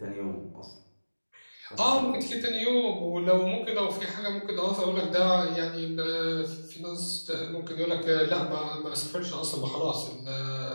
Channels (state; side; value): inverted; both; correlation -1.00